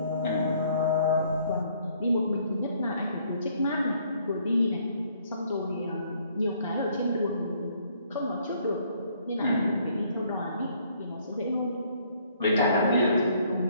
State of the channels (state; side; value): inverted; both; correlation -0.64